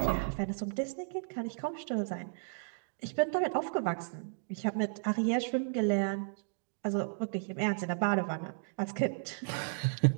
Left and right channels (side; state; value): left; silent; digital silence